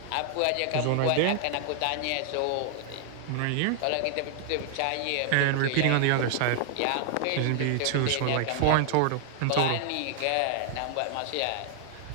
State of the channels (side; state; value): both; different; correlation 0.00